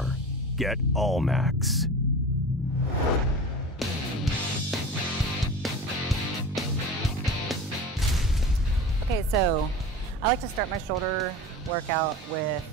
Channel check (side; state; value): both; normal; correlation 0.33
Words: Get Allmax. Okay, so I like to start my shoulder workout with